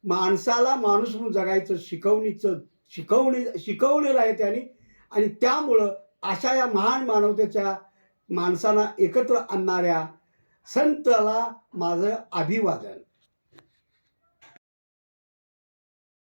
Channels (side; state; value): both; inverted; correlation -1.00